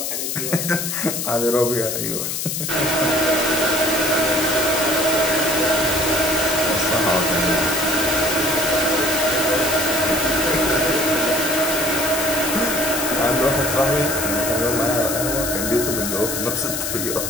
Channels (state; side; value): noise; left; hiss, 3 dB below the sound